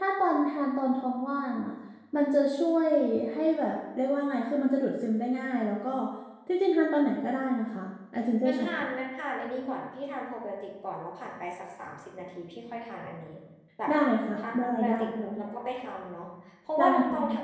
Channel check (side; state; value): both; identical; correlation 1.00